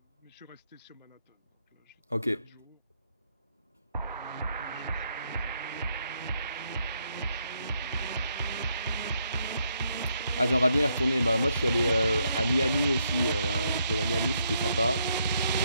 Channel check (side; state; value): both; inverted; correlation -0.75